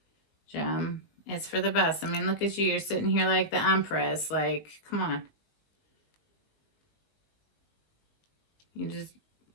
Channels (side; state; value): right; late; 19 ms